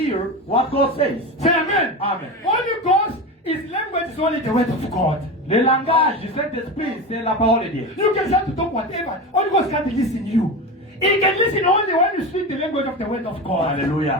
what God says. C'est Amen. Amen. Holy Ghost, his language is only the word of God. Le langage du Saint-Esprit, c'est la parole de Dieu. You can start to talk whatever. Holy Ghost can't listen you. He can listen only when you speak the language of the word of God.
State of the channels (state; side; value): normal; both; correlation 0.23